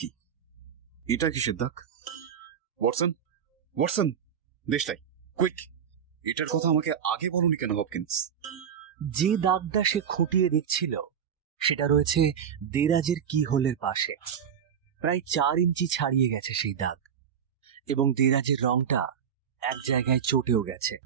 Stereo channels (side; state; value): left; quieter; 8.1 dB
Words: এটা কিসের দাগ? ওয়াটসন, ওয়াটসন, দেশটাই কুইক, এটার কথা আমাকে আগে বলুনি কেন হপকিন্স? যে দাগটা সে খুঁটিয়ে দেখছিল সেটা রয়েছে দেরাজের কি হোলের পাশে। প্রায় 4 ইঞ্চি ছাড়িয়ে গেছে সেই দাগ, এবং দেরাজের রংটা এক জায়গায় চটেও গেছে।